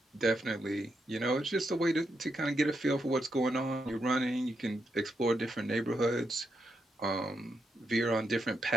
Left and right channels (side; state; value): both; normal; correlation 0.82